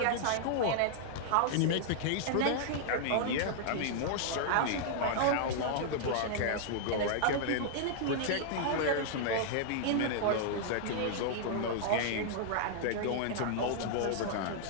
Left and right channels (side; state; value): both; different; correlation -0.01